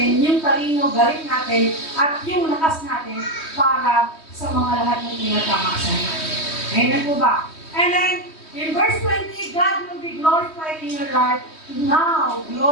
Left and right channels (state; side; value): late; right; 3.2 ms